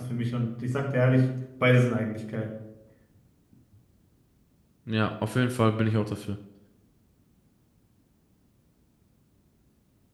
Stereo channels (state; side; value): identical; both; correlation 1.00